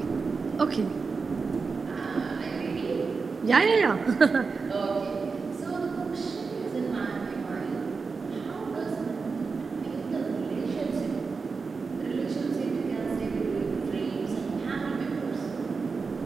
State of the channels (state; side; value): quieter; left; 4.7 dB